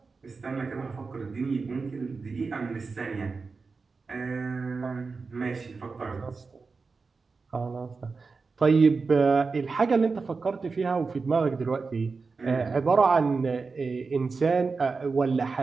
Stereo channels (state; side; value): quieter; left; 4.4 dB